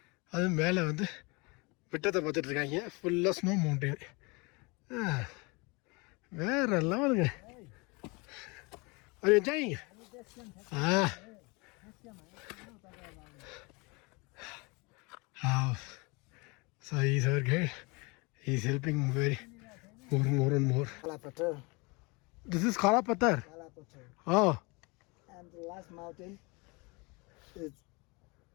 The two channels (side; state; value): right; quieter; 27.9 dB